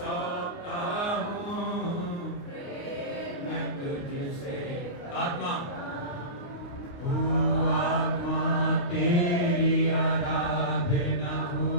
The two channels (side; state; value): right; late; 29 ms